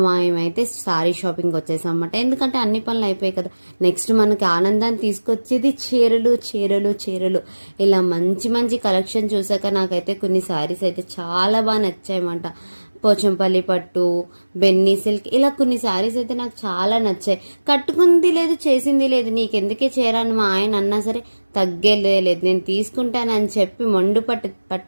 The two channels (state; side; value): inverted; both; correlation -1.00